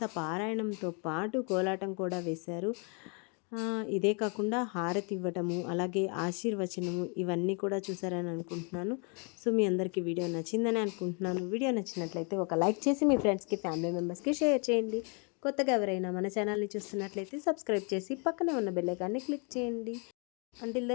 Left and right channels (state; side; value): quieter; right; 36.0 dB